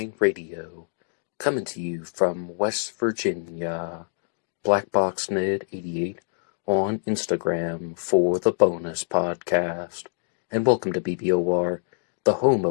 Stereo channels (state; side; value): silent; right; digital silence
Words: Radio, coming to you from West Virginia. BlackBoxNed88 on Instagram for the bonus podcast. And welcome to BBOR, the home